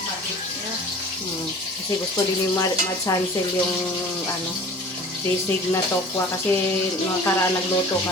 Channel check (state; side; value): normal; both; correlation 0.44